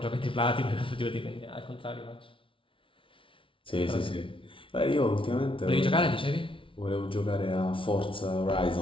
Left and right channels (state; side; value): late; right; 0.25 ms